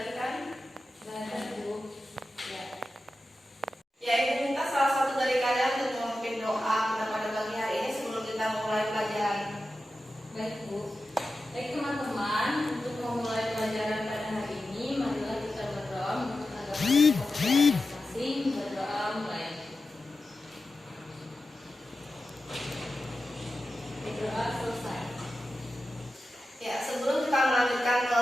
kan? Gak ada Bu. Ya. Ya, ibu minta salah satu dari kalian untuk memimpin doa kita pada pagi hari ini sebelum kita mulai pelajaran. Baik Bu. Baik teman-teman, untuk memulai pelajaran pada hari ini, marilah kita berdoa menurut agama masing-masing. Berdoa mulai. Berdoa selesai. Ya, sebelum kita melanjutkan ke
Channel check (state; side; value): normal; both; correlation 0.92